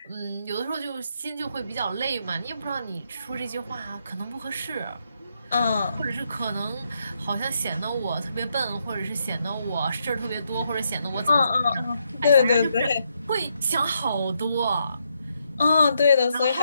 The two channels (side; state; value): both; inverted; correlation -0.78